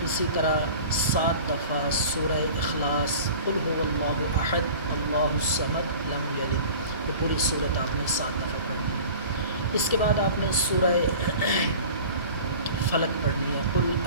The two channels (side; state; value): both; inverted; correlation -0.41